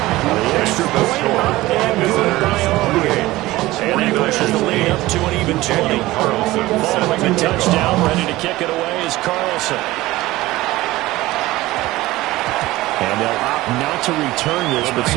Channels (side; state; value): left; quieter; 18.1 dB